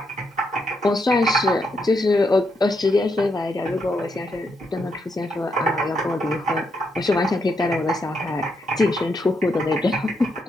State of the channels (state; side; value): normal; both; correlation 0.79